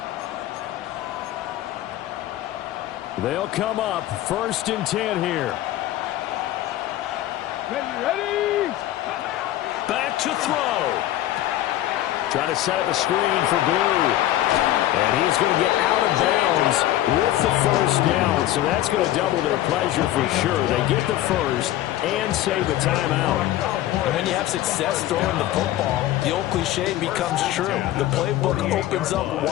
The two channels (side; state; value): right; quieter; 14.0 dB